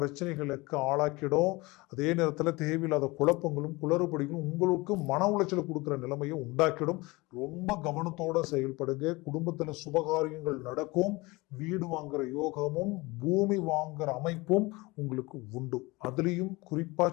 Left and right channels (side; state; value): right; quieter; 23.2 dB